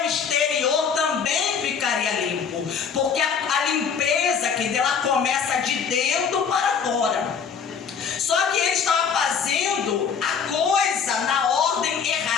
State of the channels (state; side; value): quieter; right; 6.6 dB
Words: exterior também ficaria limpo. Porque a limpeza, que ela começa de dentro para fora. Só que ele estava fazendo a coisa na ordem